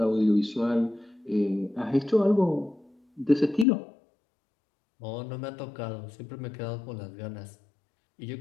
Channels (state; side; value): drops out; right; at 3.7 s